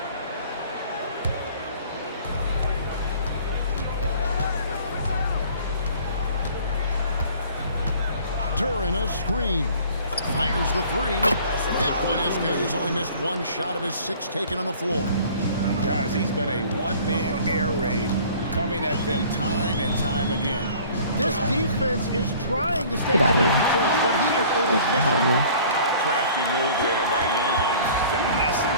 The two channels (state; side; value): inverted; both; correlation -0.50